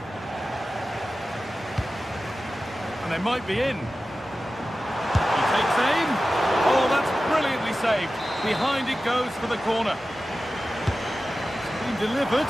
And they might be in. He takes aim. Oh, that's brilliantly saved. Behind it goes for the corner. It's been delivered.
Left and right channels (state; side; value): normal; both; correlation 0.95